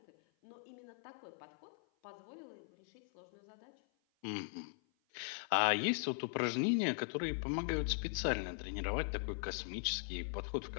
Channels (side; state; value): right; silent; 51 dB below the other